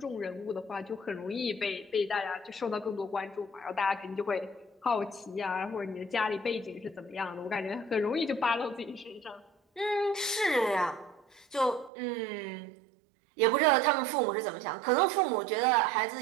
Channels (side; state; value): left; drops out; at 11.9 s